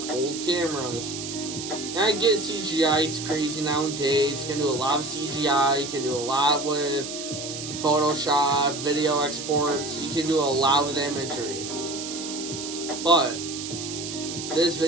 old cameras. And I get CGI is crazy nowadays. You can do a lot of CGI. You can do a lot with Photoshop, video exports. You can do a lot with imagery. But this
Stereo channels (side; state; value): right; noise; hiss, 8 dB below the sound